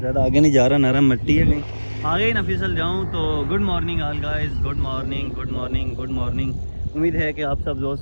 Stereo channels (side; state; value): both; inverted; correlation -1.00